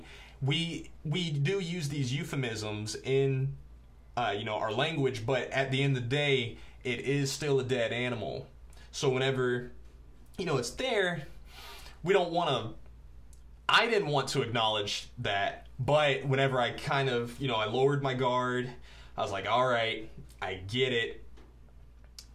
we do use these euphemisms in you know, our language, but at the end of the day, it is still a dead animal. So whenever, you know, it's there, we don't want to, I didn't want to acknowledge that, but whenever I kind of, you know, I lowered my guard, I was like, all right, I get it.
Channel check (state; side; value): identical; both; correlation 1.00